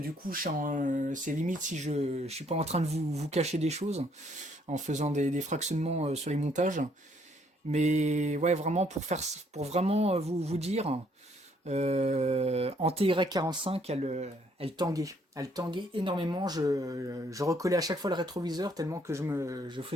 coup, c'est limite si je suis pas en train de vous cacher des choses en faisant des fractionnements sur les montages. Mais ouais, vraiment pour vraiment vous dire, en TY45, elle tanguait. Elle tanguait énormément. Je recollais à chaque fois le rétroviseur tellement que je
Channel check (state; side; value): normal; both; correlation 0.67